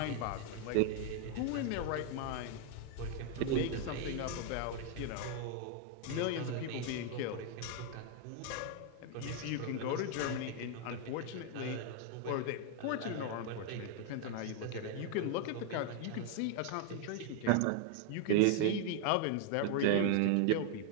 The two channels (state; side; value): different; both; correlation 0.00